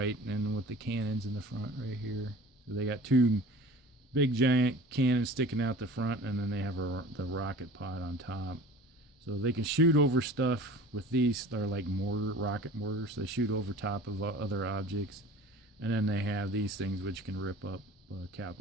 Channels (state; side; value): normal; both; correlation 0.42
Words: and with the cannons in the front right here. So they got two big giant cannons sticking out the front, and then they have the rocket pod on top. So they can shoot over stuff with these. They're like rocket mortars. They shoot over top of other objects. And then they have these things which can rip up a